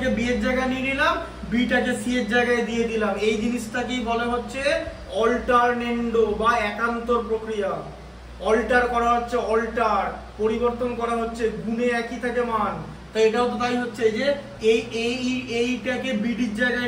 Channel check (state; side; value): identical; both; correlation 1.00